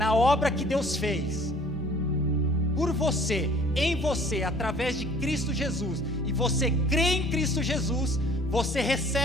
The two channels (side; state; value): both; normal; correlation 0.52